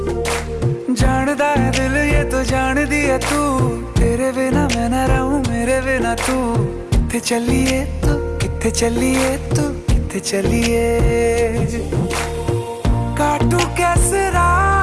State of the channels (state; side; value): identical; both; correlation 1.00